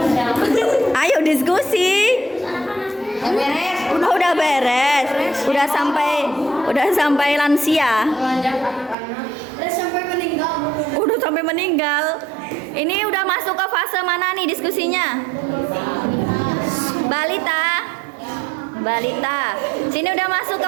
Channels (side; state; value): left; drops out; at 9.0 s